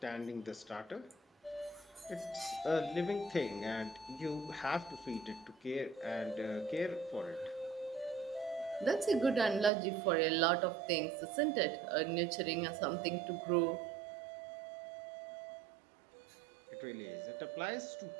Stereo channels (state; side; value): drops out; left; at 9.7 s